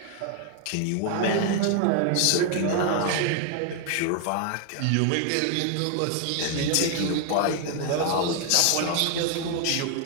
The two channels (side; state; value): both; different; correlation 0.00